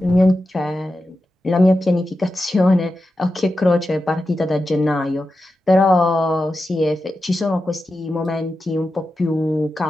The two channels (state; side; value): normal; both; correlation 0.91